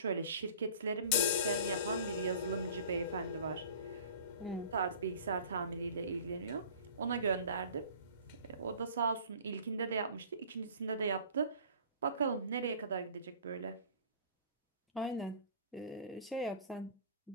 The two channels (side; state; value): both; inverted; correlation -0.45